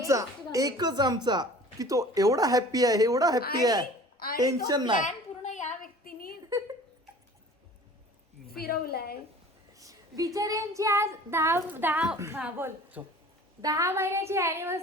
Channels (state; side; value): normal; both; correlation 0.45